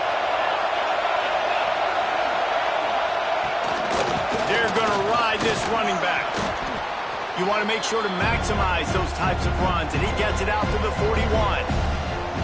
They're going to ride this running back. You want to make sure to maximize those types of runs, and he gets it out to the 41.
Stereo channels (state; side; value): identical; both; correlation 1.00